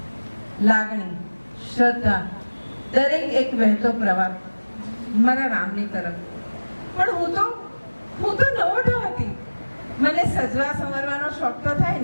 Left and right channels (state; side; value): inverted; both; correlation -1.00